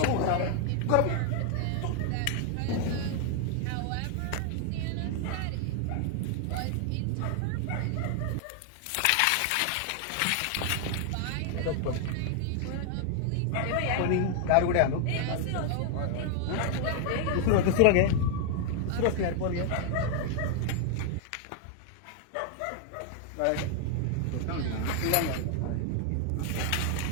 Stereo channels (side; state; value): both; different; correlation 0.00